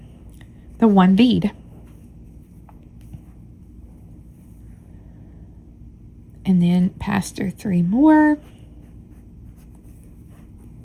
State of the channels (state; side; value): identical; both; correlation 1.00